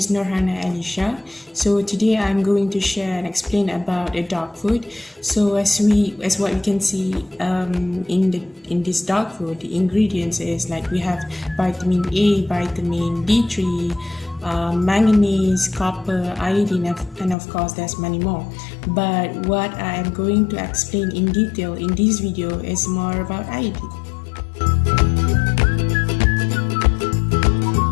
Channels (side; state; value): right; drops out; at 17.4 s